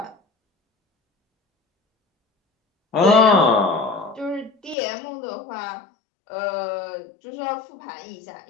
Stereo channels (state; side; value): drops out; right; at 4.8 s